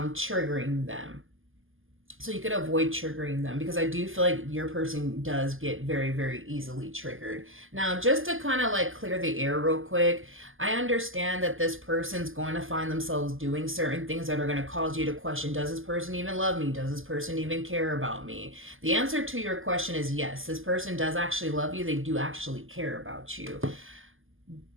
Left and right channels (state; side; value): late; left; 0.59 ms